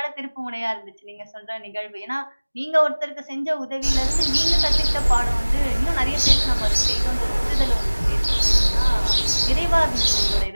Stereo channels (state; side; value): inverted; both; correlation -1.00